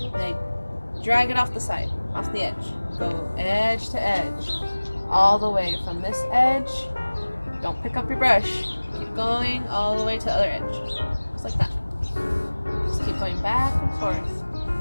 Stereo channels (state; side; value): inverted; both; correlation -1.00